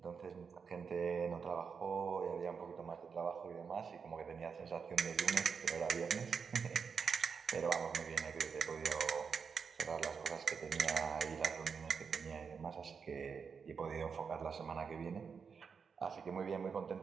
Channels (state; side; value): quieter; left; 6.0 dB